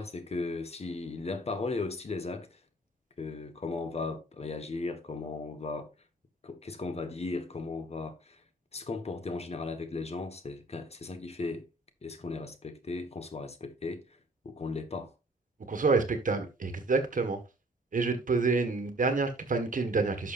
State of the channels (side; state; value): both; normal; correlation 0.54